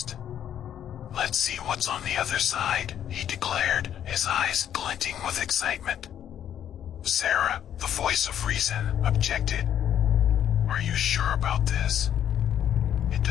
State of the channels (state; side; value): quieter; right; 10.0 dB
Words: "Let's see what's on the other side," he declared, his eyes glinting with excitement. Sarah, the voice of reason, objected. "Are you sure about this? It